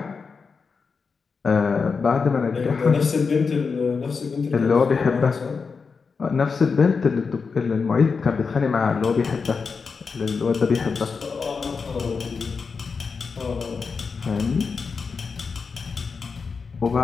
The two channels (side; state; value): right; quieter; 5.1 dB